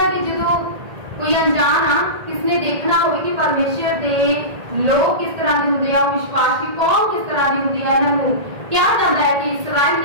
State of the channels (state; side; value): late; left; 1.8 ms